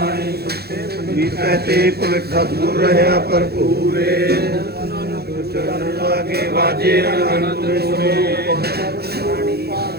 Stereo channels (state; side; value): late; left; 0.46 ms